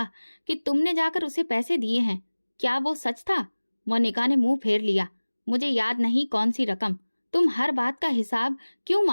कि तुमने जाकर उसे पैसे दिए हैं। क्या वो सच था? मोनिका ने मुंह फेर लिया। मुझे याद नहीं कौन सी रकम। तुम हर बात का हिसाब क्यों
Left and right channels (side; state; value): both; inverted; correlation -1.00